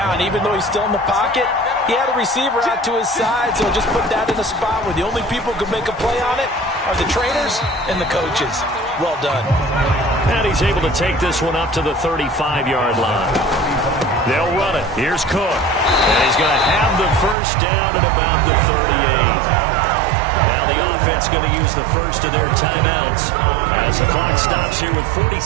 Even though he's still in the pocket, he had a receiver out to his side, so just put that in a spot where the only people who can make a play on it are the trainers and the coaches. Well done. And he's able to take this one up to the 35-yard line. They'll run it. Here's Cook. And he's going to have the first down at about the 38. Now the offense going to use the first of their timeouts as the clock stops here with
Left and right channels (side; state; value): left; drops out; at 17.4 s